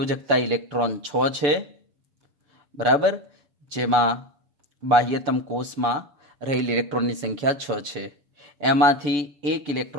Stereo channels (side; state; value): left; late; 6.9 ms